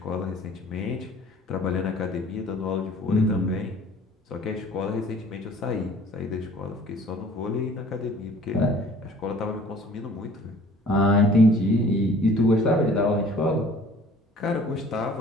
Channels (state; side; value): normal; both; correlation 0.51